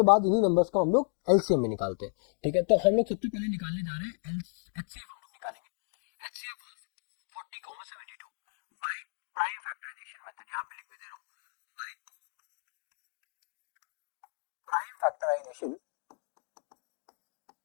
बाद इन्हीं नंबर्स को हम लोग एलसीएम में निकालते हैं। ठीक है, तो हम लोग सबसे पहले निकालने जा रहे हैं एचसीएफ। हम लोग निकालेंगे HCF of 40,72 by prime factorization method. यहाँ पे लिख भी दे रहा हूँ, बाय प्राइम फैक्टराइजेशन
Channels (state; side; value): silent; right; 56 dB below the other